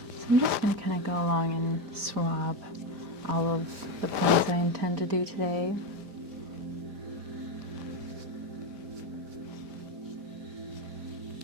I'm just going to kind of go along and swab all of the points I intend to do today.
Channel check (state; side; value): late; left; 5.0 ms